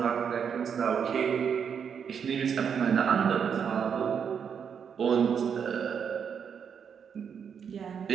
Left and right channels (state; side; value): quieter; left; 7.2 dB